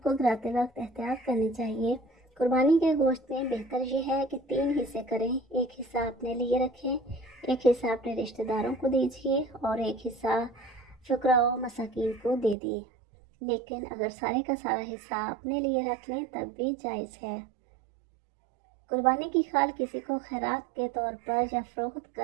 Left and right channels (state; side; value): drops out; left; at 12.6 s